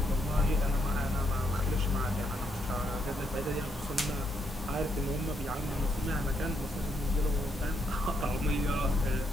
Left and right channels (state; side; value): normal; both; correlation 0.76